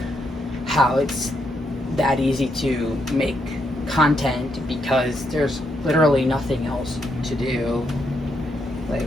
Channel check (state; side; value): normal; both; correlation 0.79